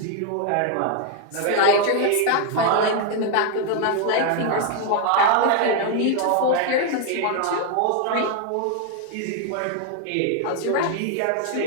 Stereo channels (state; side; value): different; both; correlation 0.00